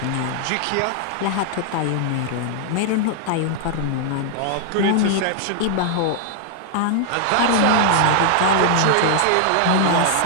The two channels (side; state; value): both; different; correlation 0.00